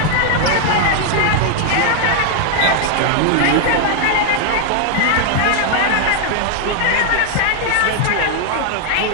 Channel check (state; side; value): different; both; correlation 0.00